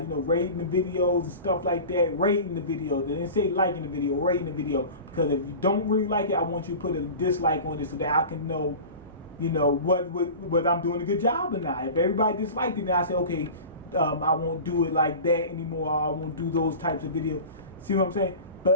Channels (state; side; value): inverted; both; correlation -0.35